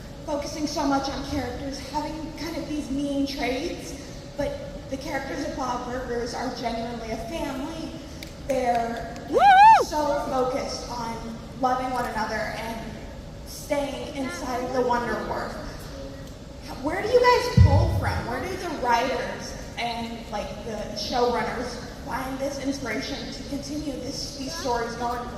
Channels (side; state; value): both; identical; correlation 1.00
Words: focusing so much on characters having kind of these mean traits, but the characters of Bob Burgers are genuinely a family. They're so focused on loving one another and staying inside of the Wonder Wharf. Where do you guys pull from? Where do the writers and the showrunners find this inspiration to continue these stories going